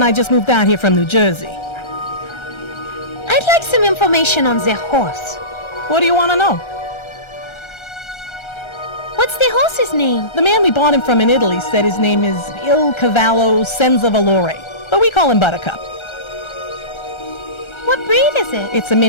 I just moved out here from New Jersey. I'd like some information on the horse. What do you want to know? What's the horse's name? The man we bought him from in Italy said his name is Il Cavallo Senza Valore, but we call him Buttercup. What breed is it? It's a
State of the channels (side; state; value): right; late; 1.3 ms